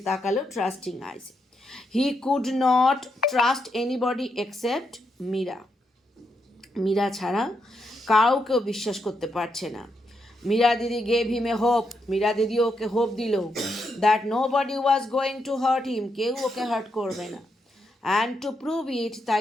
তাকালো trusting eyes. He could not trust anybody except Meera ছাড়া কাউকেও বিশ্বাস করতে পারছে না। মীরা দিদি gave him a hope, Meera দিদি ওকে হোপ দিল, that no body was going to hurt him, কেউ ওকে হার্ট করবে না। অ্যান্ড টু প্রুভ ইট, তাই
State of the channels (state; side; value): normal; both; correlation 0.81